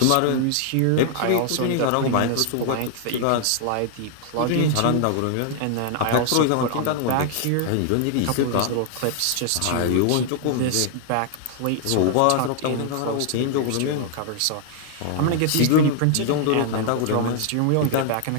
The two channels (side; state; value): both; different; correlation 0.00